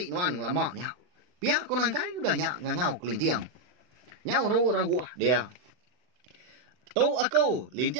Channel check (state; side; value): late; left; 40 ms